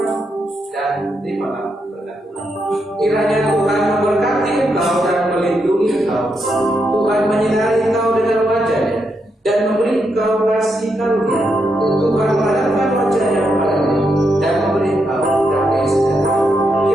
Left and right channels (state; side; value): normal; both; correlation 0.81